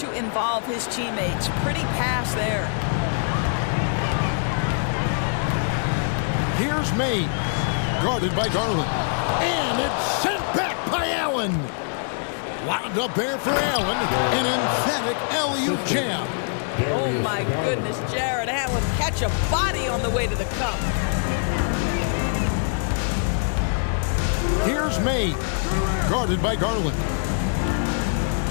involve his teammates. Pretty pass there. Here's Mays, guarded by Garland. And it's sent back by Allen. Wound up there for Allen. An emphatic alley-oop jam. Oh, my goodness, Jared Allen catch a body on the way to the cup. Here's Mays, guarded by Garland.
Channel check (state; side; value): silent; right; digital silence